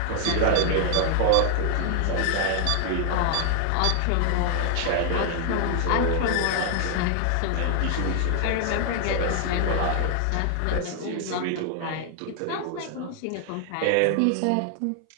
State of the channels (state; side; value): different; both; correlation 0.00